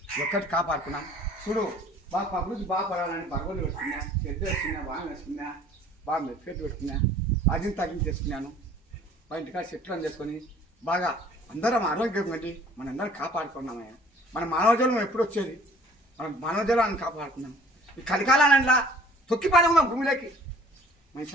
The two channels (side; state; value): both; normal; correlation 0.52